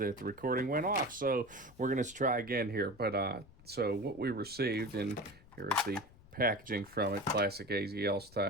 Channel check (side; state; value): left; noise; rumble, 23 dB below the sound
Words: the recording went off. So we're gonna try again here. But so what we received, and here's the packaging from it, classic AZL